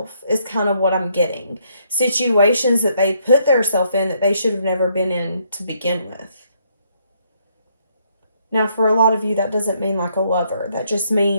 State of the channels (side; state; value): both; inverted; correlation -0.71